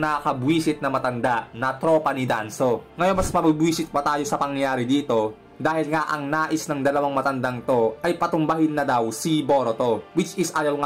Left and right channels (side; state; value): both; identical; correlation 1.00